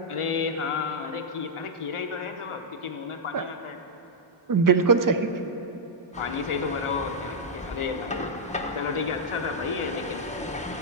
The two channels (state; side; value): normal; both; correlation -0.07